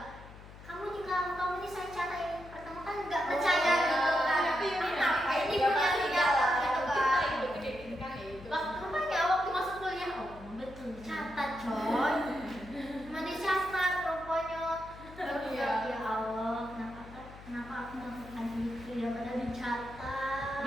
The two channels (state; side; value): noise; left; hum, 17 dB below the sound